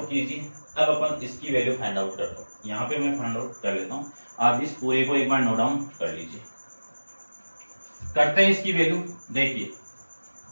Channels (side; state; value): both; inverted; correlation -1.00